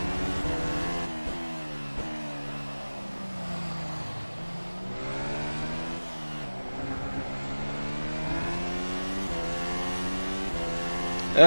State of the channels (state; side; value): inverted; both; correlation -1.00